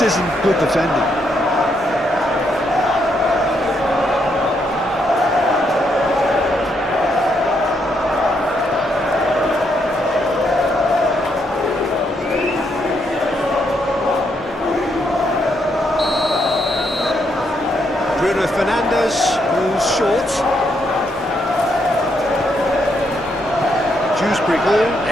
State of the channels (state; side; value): normal; both; correlation 0.76